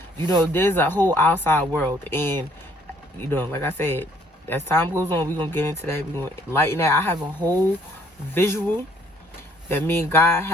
you know, there's a whole outside world. And, you know, like I said, as time goes on, we're going to get into that. We're going to lighten that. I have a whole visual that me and God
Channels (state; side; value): normal; both; correlation 0.63